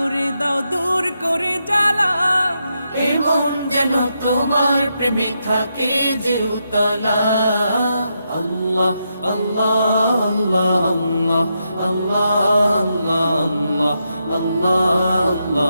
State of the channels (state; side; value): inverted; both; correlation -0.83